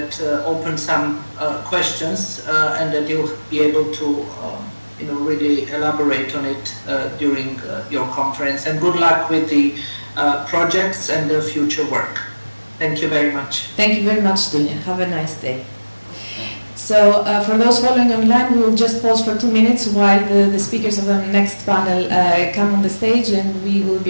opened some questions and that you'll be able to really elaborate on it during your conference. And good luck with the projects and the future work. Thank you very much. Thank you very much, Dunja. Have a nice day. So for those following online, we will just pause for 2 minutes while the speakers of the next panel come on the stage, and we will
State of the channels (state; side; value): inverted; both; correlation -1.00